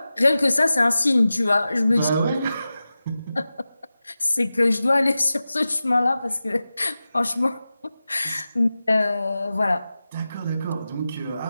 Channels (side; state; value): both; inverted; correlation -0.94